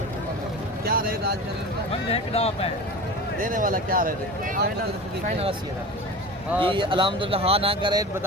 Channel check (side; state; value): both; normal; correlation 0.32